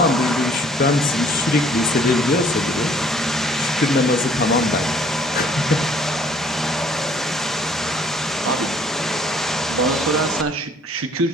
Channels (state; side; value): normal; both; correlation 0.59